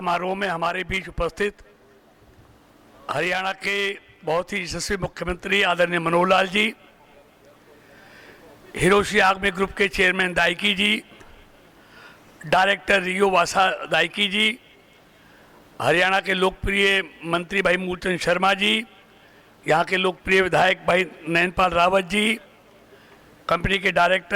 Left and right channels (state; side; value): identical; both; correlation 1.00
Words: में हमारे बीच उपस्थित हरियाणा के बहुत ही यशस्वी मुख्यमंत्री आदरणीय मनोहर लाल जी, हिरोशी आगमे ग्रुप के चेयरमैन दाइकी जी, डायरेक्टर रियो वासा दाइकी जी, हरियाणा के लोकप्रिय मंत्री भाई मूलचंद शर्मा जी, यहाँ के लोकप्रिय विधायक भाई नैनपाल रावत जी, कंपनी के